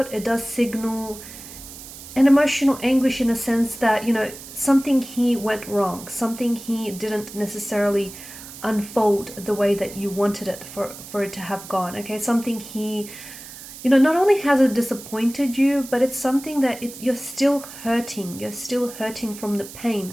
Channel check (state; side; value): noise; right; hiss, 14 dB below the sound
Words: It does signal an emotional anguish in a sense that, something here went wrong. Something here didn't necessarily unfold the way that you wanted it for it to have gone. Okay, something here, not only has it disappointed you, but it's something that you're still hurting. You're still hurting from the pain,